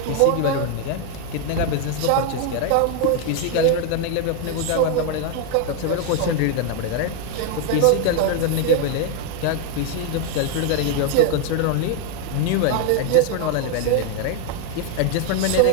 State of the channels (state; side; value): different; both; correlation 0.01